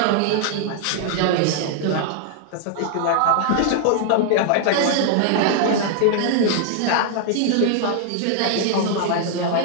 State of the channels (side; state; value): both; different; correlation 0.00